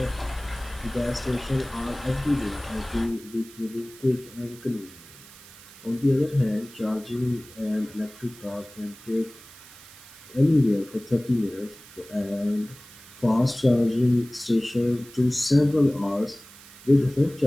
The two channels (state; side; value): noise; right; hiss, 20 dB below the sound